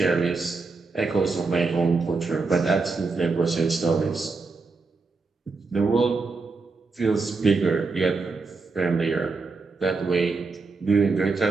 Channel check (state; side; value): quieter; left; 4.1 dB